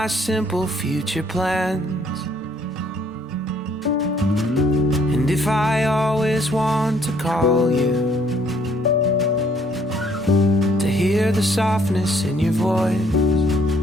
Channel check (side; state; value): both; normal; correlation 0.64